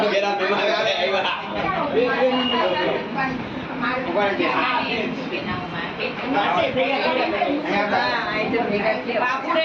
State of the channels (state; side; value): identical; both; correlation 1.00